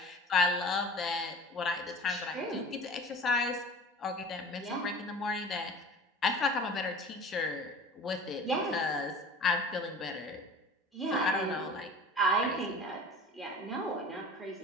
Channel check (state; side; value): normal; both; correlation 0.40